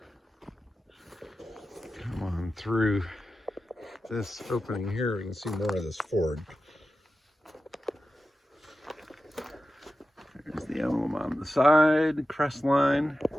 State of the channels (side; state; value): both; normal; correlation 0.93